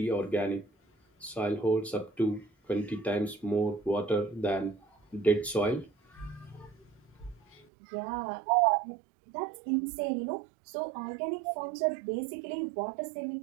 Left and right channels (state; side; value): drops out; left; at 7.7 s